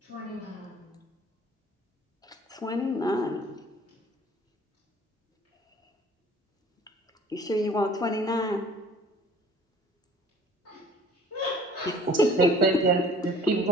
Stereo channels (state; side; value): normal; both; correlation 0.50